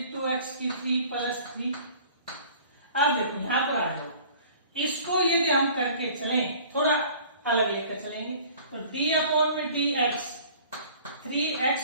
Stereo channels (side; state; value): both; inverted; correlation -0.49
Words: 2x की 3 प्लस 3। अब देखो यहां पर आ जाओ, इसको यदि हम करके चलें, थोड़ा अलग लेकर चलेंगे, तो d अपॉन में dx